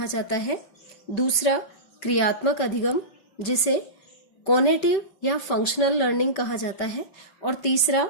जाता है। दूसरा क्रियात्मक अधिगम, जिसे कॉग्निटिव या फंक्शनल लर्निंग कहा जाता है। और तीसरा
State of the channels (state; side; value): late; right; 5.2 ms